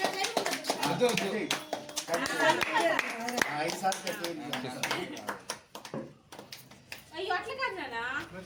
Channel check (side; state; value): both; identical; correlation 1.00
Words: అయ్యో అట్లా కాదు నానా